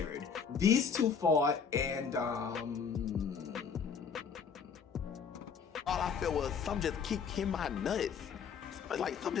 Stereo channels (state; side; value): quieter; right; 6.4 dB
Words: These 2 fought and all I felt was some just keep hitting my nuts. Like, some